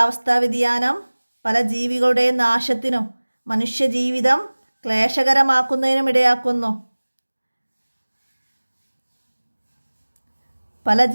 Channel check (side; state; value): both; inverted; correlation -1.00